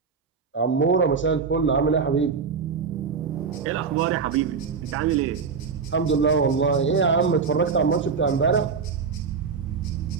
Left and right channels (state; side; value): quieter; left; 5.5 dB